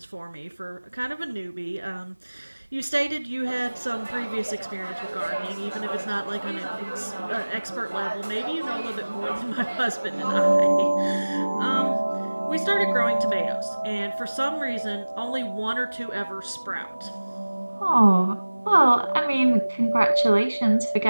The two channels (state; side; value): inverted; both; correlation -1.00